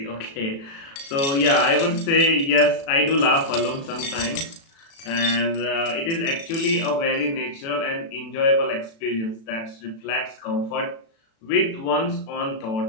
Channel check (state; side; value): late; right; 36 ms